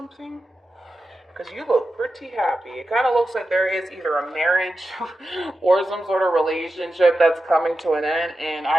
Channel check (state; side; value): normal; both; correlation 0.91